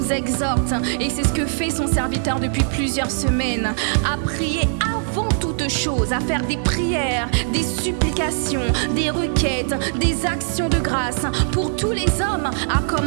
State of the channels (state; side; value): silent; left; digital silence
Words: exhorte, et c'est ce que fait son serviteur depuis plusieurs semaines, à prier avant toute chose, à faire des prières, des supplications, des requêtes, des actions de grâce pour tous les hommes, à